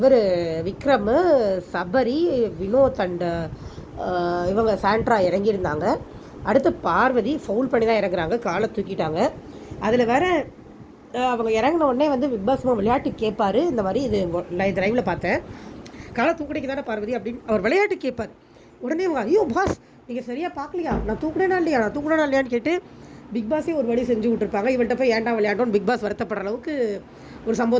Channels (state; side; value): identical; both; correlation 1.00